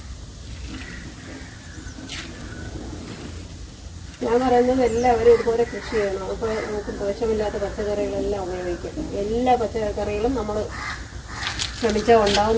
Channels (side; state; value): both; identical; correlation 1.00